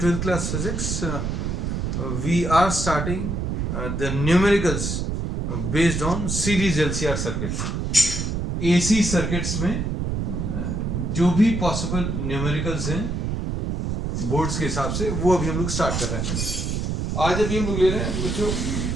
class physics, we are starting the numericals based on series LCR circuit. AC circuits में जो भी possible numericals हैं boards के हिसाब से वो अभी हम लोग स्टार्ट कर रहे हैं. आज अभी हम लोग ले रहे हैं बच्चों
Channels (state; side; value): noise; right; rumble, 1 dB below the sound